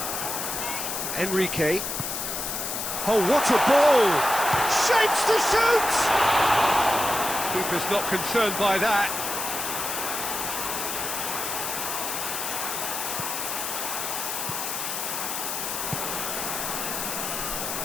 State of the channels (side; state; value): left; noise; hiss, 3 dB below the sound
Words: Enrique. Oh, what a ball! Shapes to shoot! Keeper's not concerned by that.